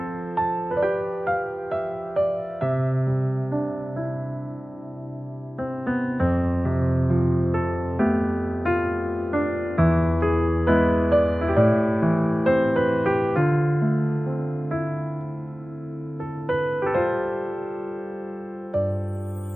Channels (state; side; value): normal; both; correlation 0.96